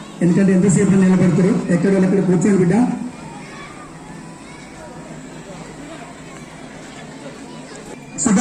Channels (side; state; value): both; identical; correlation 1.00